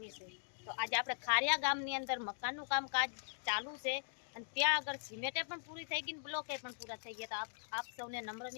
છે। તો આજે આપણે ખારિયા ગામની અંદર મકાનનું કામકાજ ચાલુ છે અને ત્યાં આગળ સિમેન્ટે પણ પૂરી થઈ ગઈ, બ્લોકે પણ પૂરા થઈ ગયા। તો આપ સૌને નમ્ર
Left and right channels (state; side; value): silent; right; digital silence